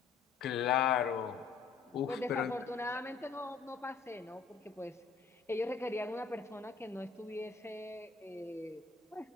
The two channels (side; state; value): right; quieter; 5.5 dB